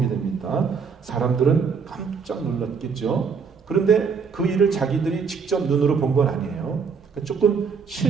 됩니다. 사람들은 깜짝 놀랐겠죠. 그런데 그 일을 자기들이 직접 눈으로 본 건 아니에요. 조금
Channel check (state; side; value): quieter; left; 5.8 dB